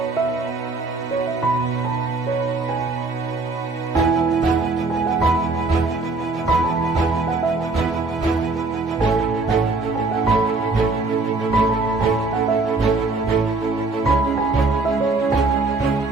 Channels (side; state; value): left; quieter; 3.5 dB